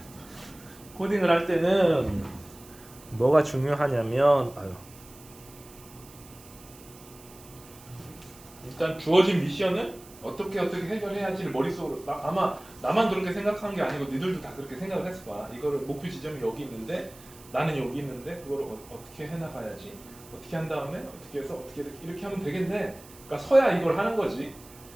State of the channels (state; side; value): noise; right; hiss, 21 dB below the sound